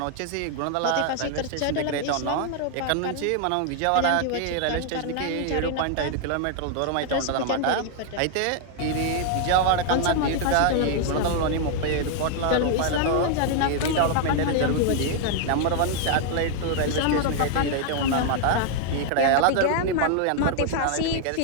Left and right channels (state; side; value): different; both; correlation 0.00